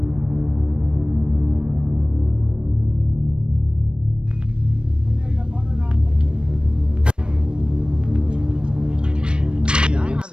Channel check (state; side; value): late; left; 0.054 ms